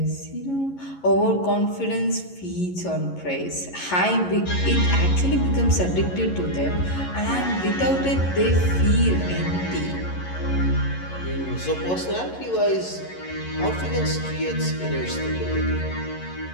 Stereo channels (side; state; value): right; late; 11 ms